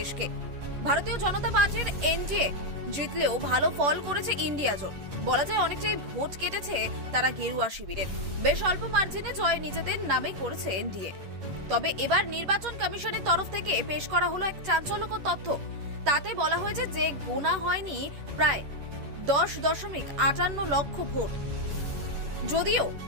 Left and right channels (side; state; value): left; late; 11 ms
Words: ভারতীয় জনতা পার্টির এনডিএ জিতলেও ভালো ফল করেছে ইন্ডিয়া জোট। বলা যায় অনেকটাই ভোট কেটেছে তারা গেরুয়া শিবিরের। বেশ অল্প মার্জিনে জয় নিজেদের নামে করেছে এনডিএ। তবে এবার নির্বাচন কমিশনের তরফ থেকে পেশ করা হলো এক চাঞ্চল্যকর তথ্য। তাতে বলা হয়েছে যে গোনা হয়নি প্রায় 10.58 লক্ষ ভোট। যদিও